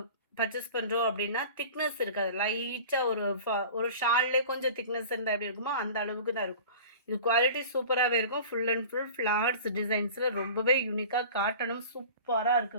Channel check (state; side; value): inverted; both; correlation -0.39